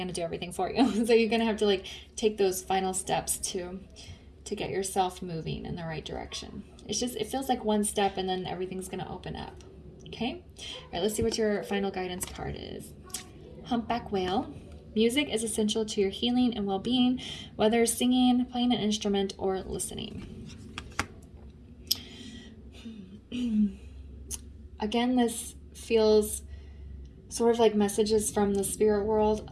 to do everything for you. So you're going to have to like take those final steps to get yourself moving in the right direction. It feels like one step and then everything's going to open up. Okay. All right, let's see what your final guidance card is. Humpback Whale. Music is essential to your healing and well-being, whether singing, playing an instrument, or listening. Again, this feels sort of like messages from the spirit world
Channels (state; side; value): identical; both; correlation 1.00